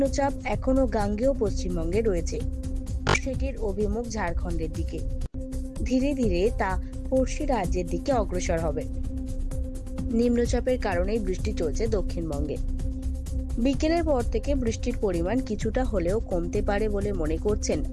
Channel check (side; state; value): both; identical; correlation 1.00